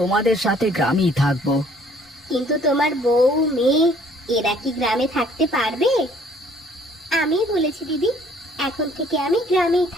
সাথে গ্রামেই থাকবো। কিন্তু তোমার বউ মেয়ে এরা কি গ্রামে থাকতে পারবে? আমি বলেছি দিদি, এখন থেকে আমি গ্রামেই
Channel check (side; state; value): both; normal; correlation 0.59